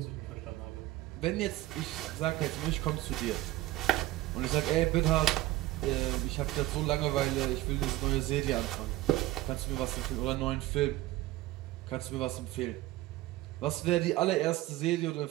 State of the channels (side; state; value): left; quieter; 16.8 dB